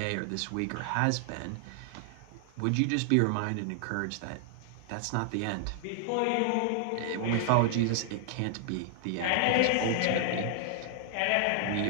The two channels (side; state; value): both; different; correlation 0.00